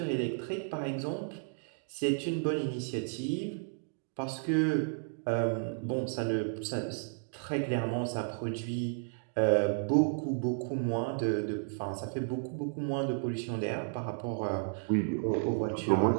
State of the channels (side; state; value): left; silent; digital silence